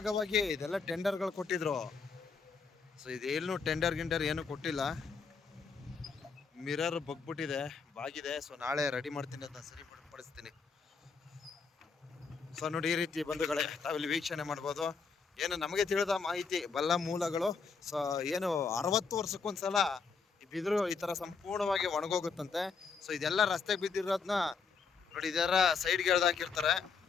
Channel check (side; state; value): right; quieter; 5.3 dB